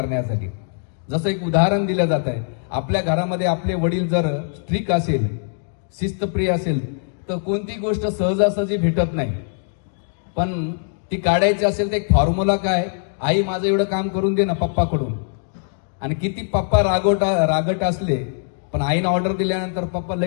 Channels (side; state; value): right; silent; digital silence